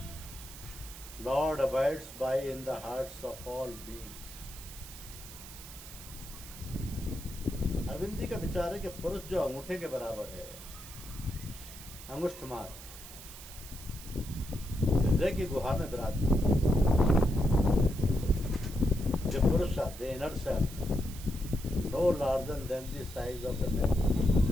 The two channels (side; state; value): right; noise; hiss, 14 dB below the sound